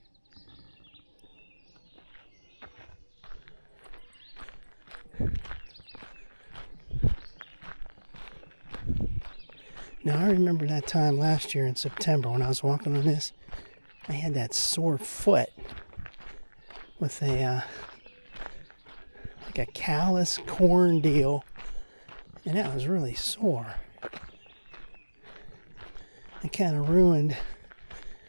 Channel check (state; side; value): inverted; both; correlation -1.00